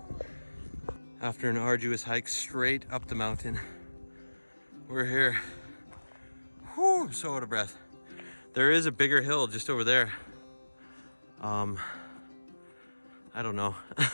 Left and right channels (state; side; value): inverted; both; correlation -1.00